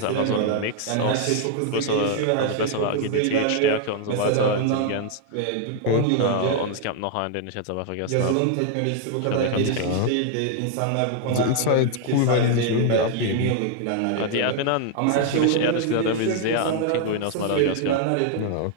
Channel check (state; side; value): different; both; correlation 0.00